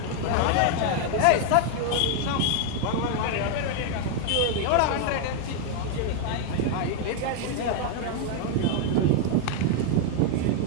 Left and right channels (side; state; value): both; different; correlation 0.00